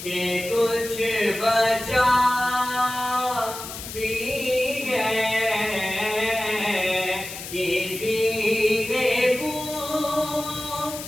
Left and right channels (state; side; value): noise; left; hiss, 10 dB below the sound